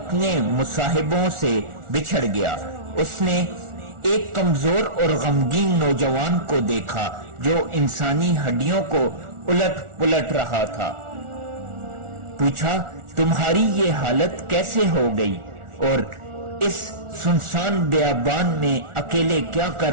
مصاحبوں سے بچھڑ گیا۔ اس نے ایک کمزور اور غمگین نوجوان کو دیکھا جو انسانی ہڈیوں کو الٹ پلٹ رہا تھا۔ پوچھا، تمہاری یہ حالت کیسے ہو گئی اور اس سنسان بیابان میں اکیلے کیا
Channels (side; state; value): left; late; 1.4 ms